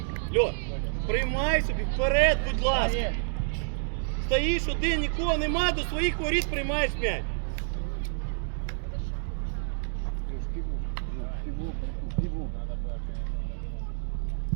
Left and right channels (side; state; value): left; silent; digital silence